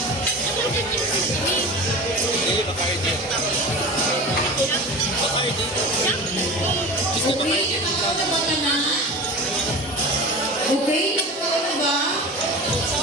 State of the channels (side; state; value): both; normal; correlation 0.32